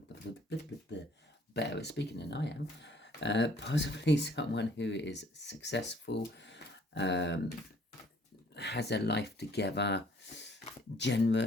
better at speaking than I am. Possibly someone who is successful, has their life together,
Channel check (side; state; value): both; normal; correlation 0.60